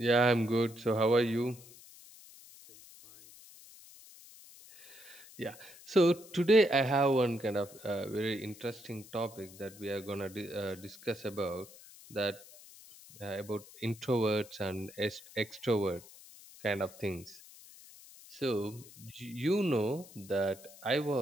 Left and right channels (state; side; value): noise; left; hiss, 20 dB below the sound